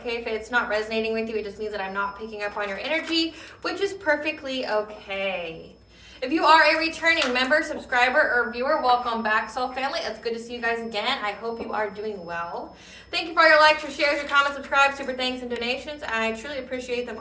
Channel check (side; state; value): both; identical; correlation 1.00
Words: If it's not resonating with you, it just means that I'm not picking up on your energy, which is perfectly okay. If you are a returning member, subscriber, or viewer, welcome back, Soul Family. It's good to see you guys again. I hope you are doing well. Thank you for your likes, your shares, your comments, subscribes, super thanks, and donations. I truly appreciate them